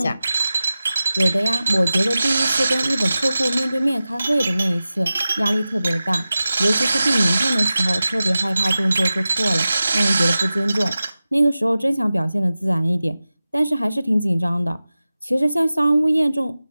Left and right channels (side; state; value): both; inverted; correlation -0.95